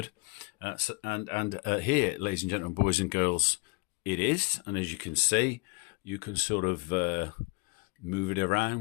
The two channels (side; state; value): right; quieter; 28.5 dB